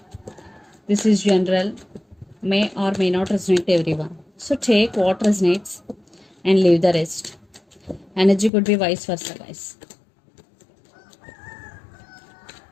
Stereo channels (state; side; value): drops out; right; at 8.5 s